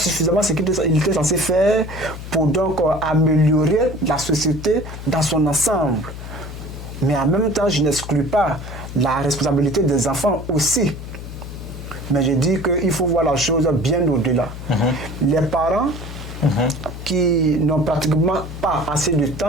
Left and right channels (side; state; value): left; noise; hum, 10 dB below the sound